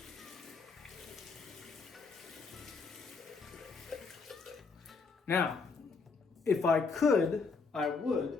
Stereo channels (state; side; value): quieter; right; 4.6 dB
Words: Now, if I could, I